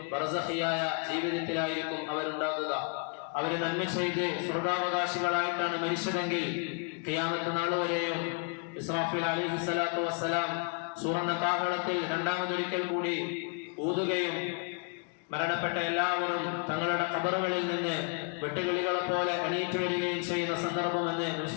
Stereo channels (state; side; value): quieter; right; 35.0 dB